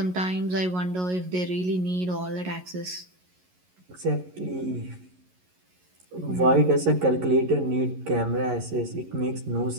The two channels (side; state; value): left; late; 11 ms